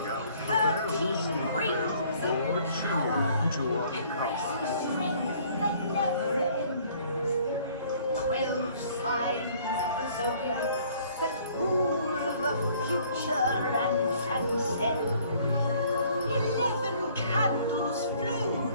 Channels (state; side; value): inverted; both; correlation -0.58